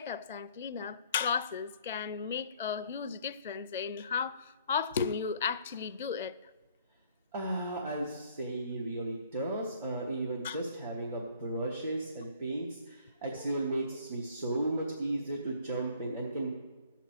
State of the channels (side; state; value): both; inverted; correlation -0.59